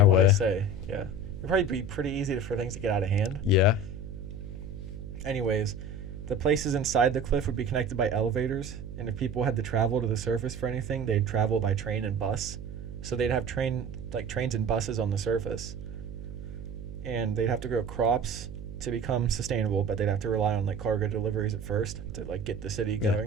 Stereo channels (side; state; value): right; noise; hum, 10 dB below the sound